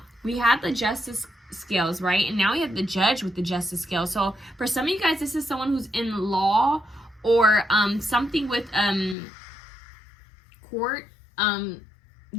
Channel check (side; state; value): right; drops out; at 9.2 s